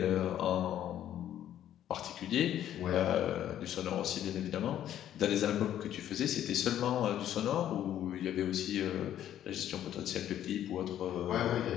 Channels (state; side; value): quieter; right; 11.2 dB